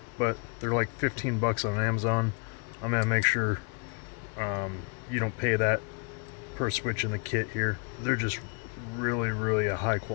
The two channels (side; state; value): right; quieter; 35.7 dB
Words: But they're like 15 bucks on Amazon. I'm going to make sure you don't pay that per switch in the kit here. They're just really a high